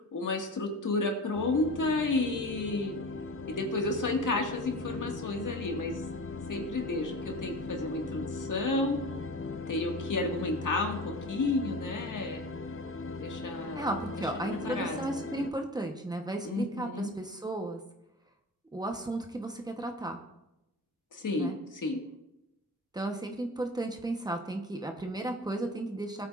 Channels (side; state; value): both; normal; correlation 0.34